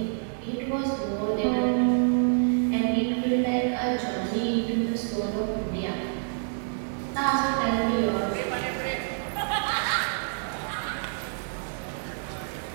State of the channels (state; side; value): silent; left; digital silence